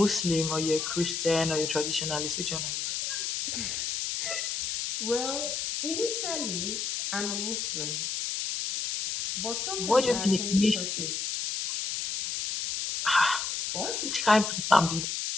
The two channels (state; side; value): noise; left; hiss, 2 dB below the sound